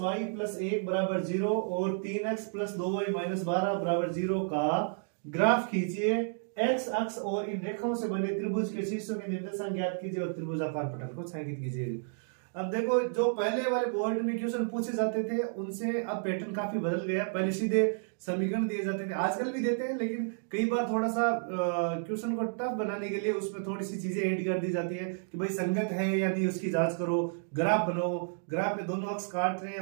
प्लस 1 बराबर 0 और 3x प्लस 2y माइनस 12 बराबर 0 का ग्राफ खींचिए। x अक्ष और इन रेखाओं से बने त्रिभुज के शीर्षों के निर्देशांक ज्ञात कीजिए और त्रिभुजाकार पटल को छायांकित कीजिए। अब देखो, जो पहले वाले बोर्ड में क्वेश्चन पूछे जाते थे उनसे अब पैटर्न काफी बदल गया। पहले सीधे समीकरण दिए जाते थे, आजकल भी देते हैं, लेकिन कई बार थोड़ा सा क्वेश्चन को टफ बनाने के लिए उसमें थोड़ी सी चीजें ऐड कर दी जाती है कि भाई संगत है या नहीं उसकी जांच करो, ग्राफ बनाओ, ग्राफ में दोनों अक्ष काट रहे हैं,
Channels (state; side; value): silent; left; digital silence